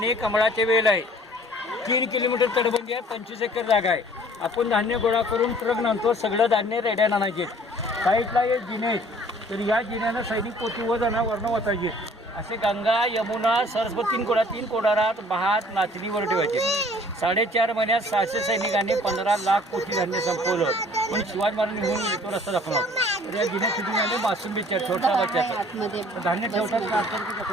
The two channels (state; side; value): normal; both; correlation 0.53